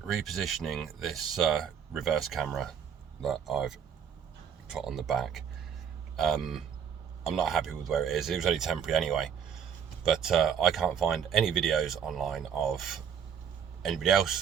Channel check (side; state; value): left; quieter; 7.7 dB